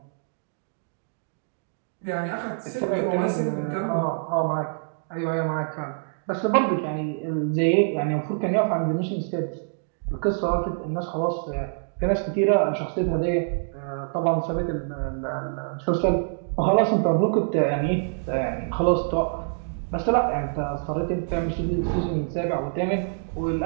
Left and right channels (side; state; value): left; silent; digital silence